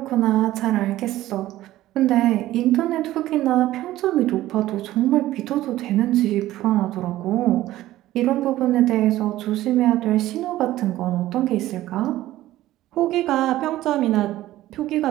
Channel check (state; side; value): quieter; left; 15.1 dB